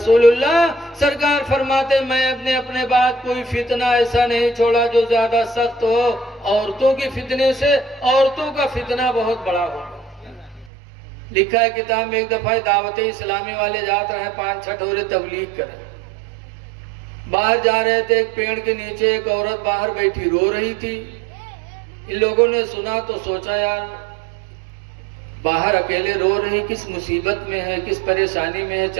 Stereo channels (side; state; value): left; drops out; at 10.7 s